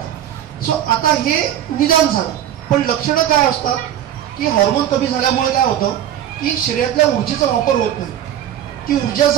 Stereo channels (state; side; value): quieter; left; 11.0 dB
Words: सो आता हे निदान झालं, पण लक्षणं काय असतात की हॉर्मोन कमी झाल्यामुळे काय होतं की शरीरातल्या ऊर्जेचा वापर होत नाही. ती ऊर्जा